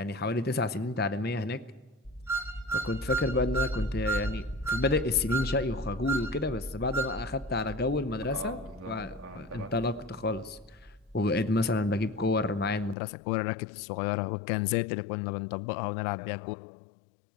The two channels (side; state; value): right; drops out; at 13.0 s